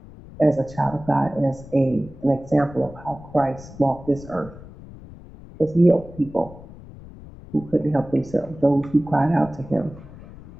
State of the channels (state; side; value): noise; left; rumble, 18 dB below the sound